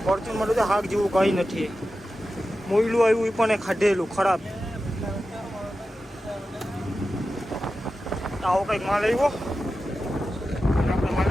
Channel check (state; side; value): normal; both; correlation 0.92